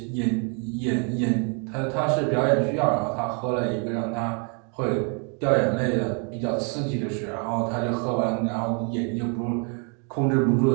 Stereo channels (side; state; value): left; quieter; 37.9 dB